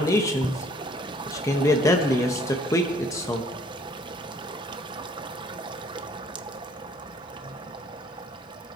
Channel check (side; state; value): both; normal; correlation 0.59